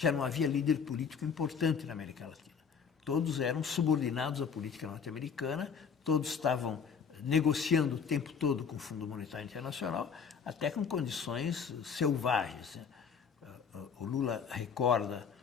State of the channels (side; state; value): right; quieter; 6.5 dB